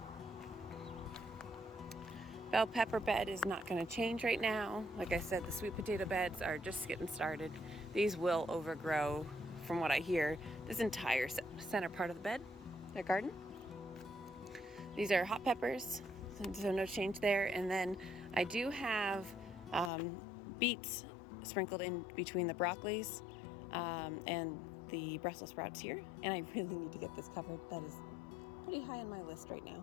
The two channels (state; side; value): drops out; right; at 19.9 s